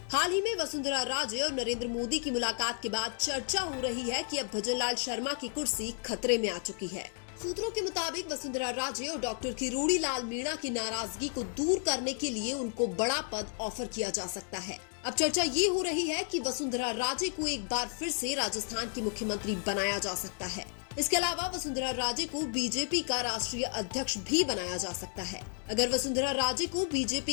हाल ही में वसुंधरा राजे और नरेंद्र मोदी की मुलाकात के बाद चर्चा हो रही है कि अब भजनलाल शर्मा की कुर्सी खतरे में आ चुकी है। सूत्रों के मुताबिक वसुंधरा राजे और डॉक्टर किरोड़ी लाल मीणा की नाराजगी को दूर करने के लिए उनको बड़ा पद ऑफर किया जा सकता है। अब चर्चा ये हो रही है कि वसुंधरा राजे को एक बार फिर से राजस्थान की मुख्यमंत्री बनाया जा सकता है। इसके अलावा वसुंधरा राजे को बीजेपी का राष्ट्रीय अध्यक्ष भी बनाया जा सकता है। अगर वसुंधरा राजे को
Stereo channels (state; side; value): silent; right; 56 dB below the other